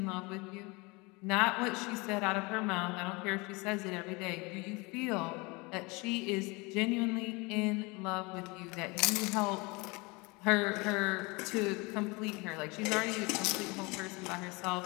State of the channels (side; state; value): right; quieter; 26.4 dB